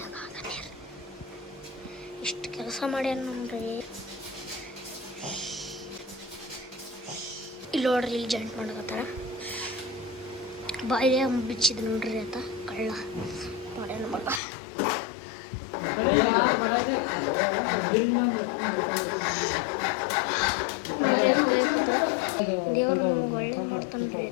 ಇಷ್ಟು ಕೆಲಸ ಮಾಡ್ಯಾನ ನೋಡ್ರಿ. ಇಲ್ಲಿ ನೋಡ್ರಿ ಇಲ್ಲಿ ಜಾಯಿಂಟ್ ಮಾಡಕತ್ತಾರ. ಬಾಯಿಲೆ ಬಿಚ್ಚಿದ್ ನೋಡ್ರಿ ಆತ ಕಳ್ಳ ಮಾಡ್ಯಾನ ಮಗ. ದೇವ್ರು ನಮ್ಗೆ ಒಳ್ಳೆ ಮಾಡ್ತಾನ್ರಿ.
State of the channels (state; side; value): drops out; right; at 14.4 s